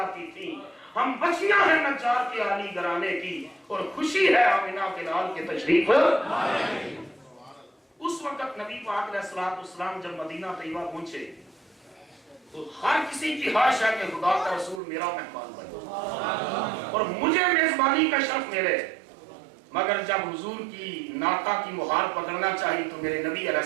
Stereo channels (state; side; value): drops out; left; at 14.8 s